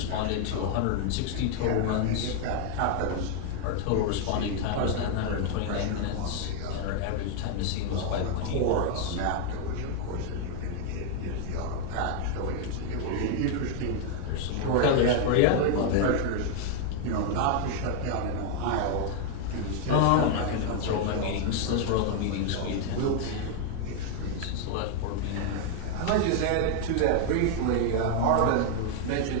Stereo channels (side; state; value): both; different; correlation 0.00